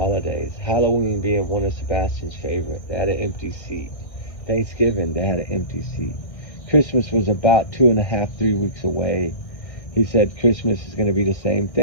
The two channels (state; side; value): late; right; 1.6 ms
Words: Halloween being one of Sebastian's favorite. They had an empty seat. Thanksgiving, they had an empty seat. Christmas was about 2.5, 3 weeks away. He said Christmas is going to be the same